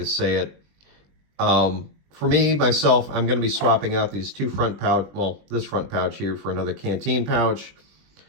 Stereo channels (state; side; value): late; left; 20 ms